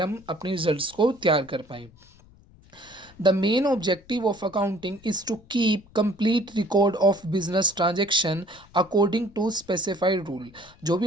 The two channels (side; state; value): left; noise; rumble, 26 dB below the sound